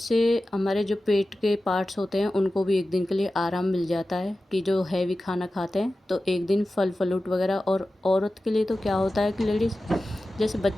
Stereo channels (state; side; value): normal; both; correlation 0.94